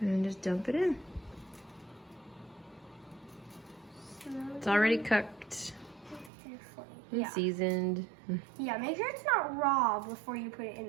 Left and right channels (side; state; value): left; drops out; at 6.3 s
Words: And just dump it in. It's already cooked and seasoned. Yeah, make sure it's not raw before you put it in